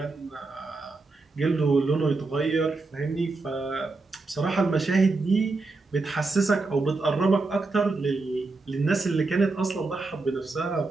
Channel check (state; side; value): quieter; left; 3.6 dB